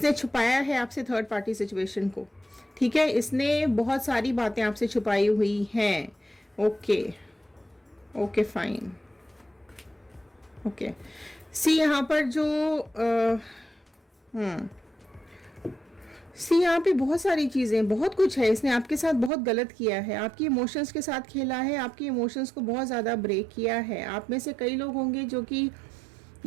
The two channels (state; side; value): drops out; left; at 19.3 s